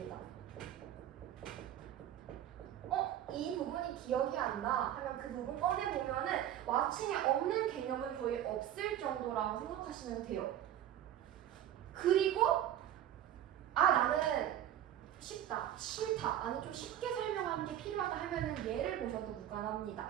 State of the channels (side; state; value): left; quieter; 11.5 dB